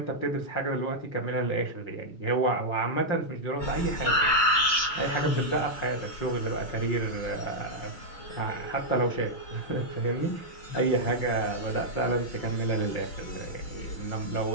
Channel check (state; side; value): late; right; 6.2 ms